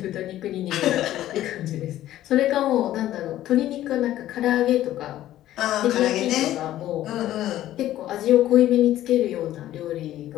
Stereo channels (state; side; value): quieter; right; 13.5 dB